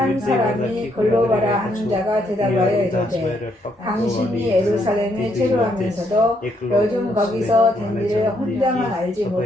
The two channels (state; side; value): normal; both; correlation 0.73